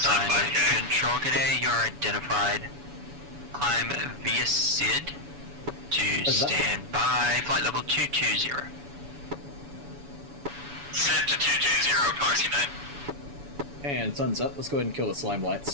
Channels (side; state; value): left; late; 7.0 ms